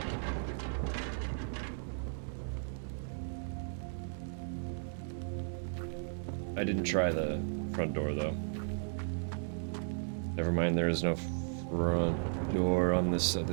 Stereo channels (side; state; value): left; silent; digital silence